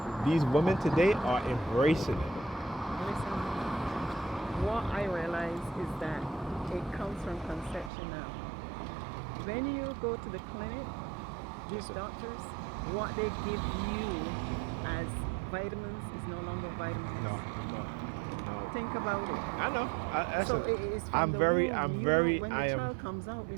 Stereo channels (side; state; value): left; drops out; at 7.9 s